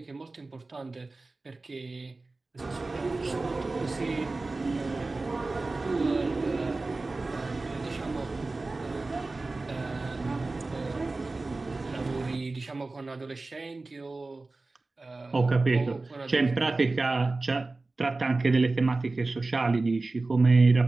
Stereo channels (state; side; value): quieter; left; 3.4 dB